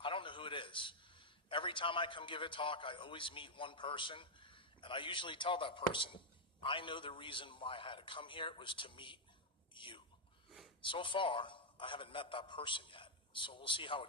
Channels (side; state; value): both; normal; correlation -0.03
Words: don't know who it is. Every time I come give a talk, I always meet one person, and I usually tell that person, I know the reason why I had to come here was to meet you. So far, I haven't met that person yet, so we'll see how